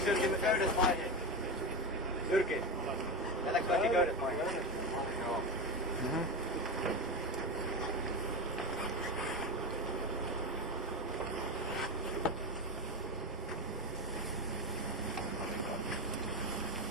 Jyrki köydet maihin? Jyrki, jätäks kaikki köydet maihin? Joo.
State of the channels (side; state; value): both; normal; correlation 0.17